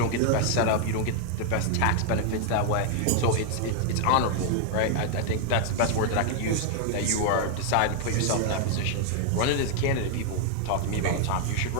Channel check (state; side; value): different; both; correlation 0.00